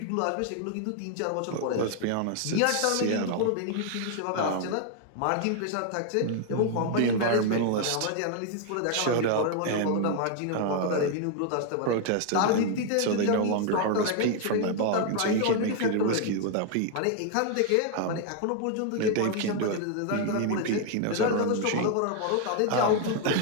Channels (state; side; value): different; both; correlation 0.00